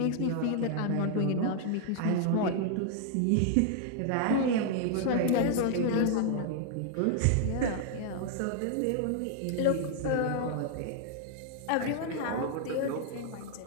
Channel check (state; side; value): different; both; correlation 0.00